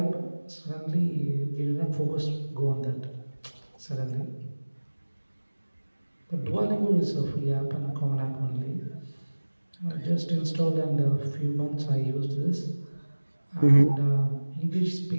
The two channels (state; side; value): inverted; both; correlation -1.00